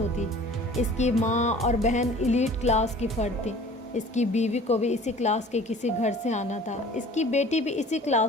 اس کی ماں اور بہن ایلیٹ کلاس کی فرد تھی، اس کی بیوی کو بھی اسی کلاس کے کسی گھر سے آنا تھا، اس کی بیٹی بھی اسی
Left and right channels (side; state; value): both; normal; correlation 0.46